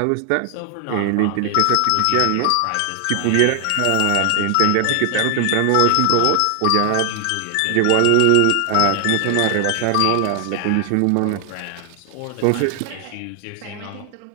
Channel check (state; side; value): different; both; correlation 0.00